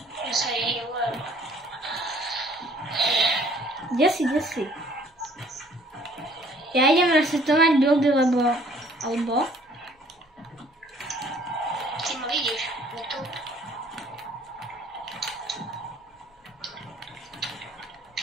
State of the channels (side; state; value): both; normal; correlation 0.58